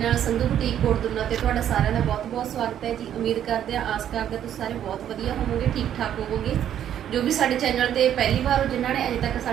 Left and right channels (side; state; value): left; quieter; 10.3 dB